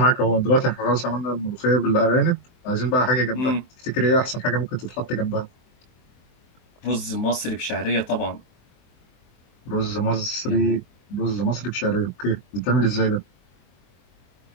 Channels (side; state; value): right; late; 24 ms